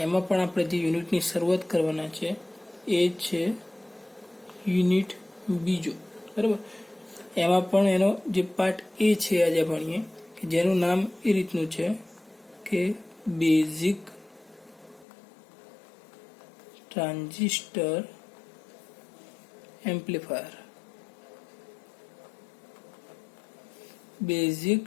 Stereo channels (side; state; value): right; drops out; at 15.1 s